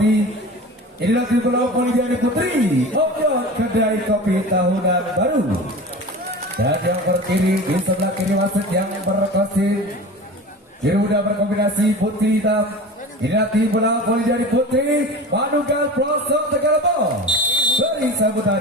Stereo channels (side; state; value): both; normal; correlation 0.34